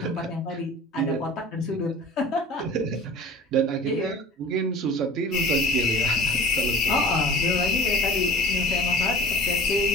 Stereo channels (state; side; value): normal; both; correlation 0.42